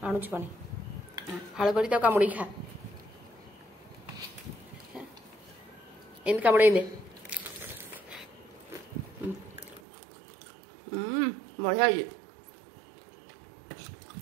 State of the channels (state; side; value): drops out; left; at 9.8 s